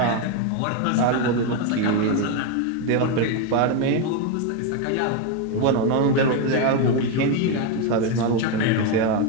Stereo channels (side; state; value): both; different; correlation 0.02